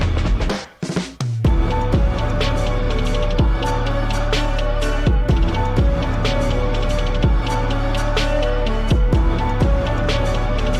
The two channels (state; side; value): identical; both; correlation 1.00